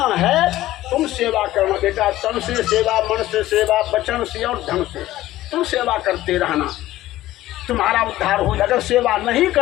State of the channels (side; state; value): right; quieter; 15.3 dB